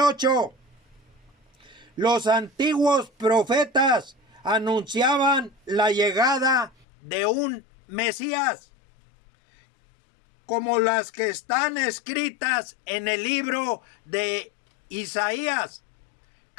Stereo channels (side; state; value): right; drops out; at 6.9 s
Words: 8. Los antiguos profetas anunciaban la llegada de un Mesías, como las que están escritas en el libro de Isaías,